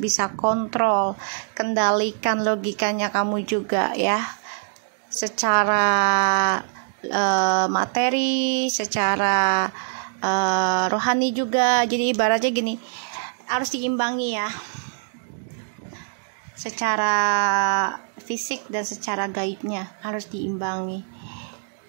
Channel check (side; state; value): left; silent; digital silence